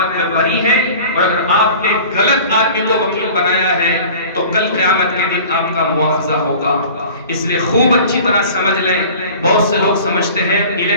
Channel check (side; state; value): both; inverted; correlation -0.43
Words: میں بری ہیں، اور اگر آپ نے غلط آدمی کو وکیل بنایا ہے تو کل قیامت کے دن آپ کا مواخذہ ہوگا۔ اس لیے خوب اچھی طرح سمجھ لیں۔ بہت سے لوگ سمجھتے ہیں